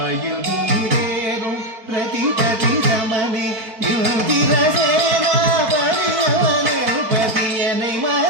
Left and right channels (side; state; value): left; late; 4.5 ms